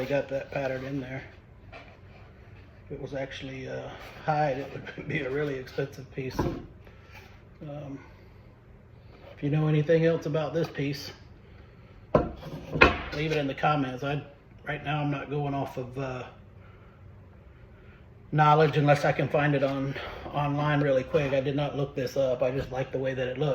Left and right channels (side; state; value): both; identical; correlation 1.00